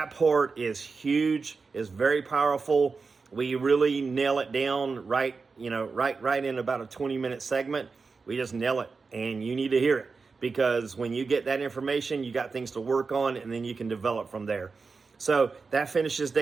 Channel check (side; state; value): left; quieter; 4.6 dB